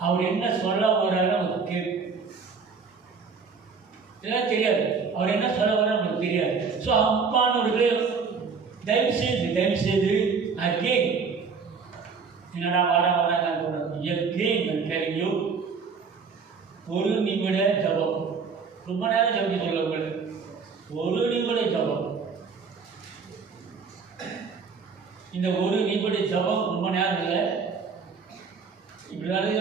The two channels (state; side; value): quieter; left; 5.3 dB